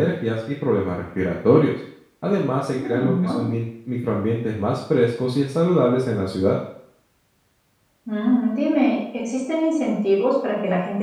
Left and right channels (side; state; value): both; identical; correlation 1.00